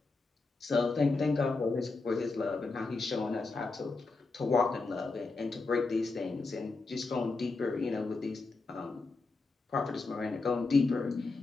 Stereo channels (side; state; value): right; quieter; 3.8 dB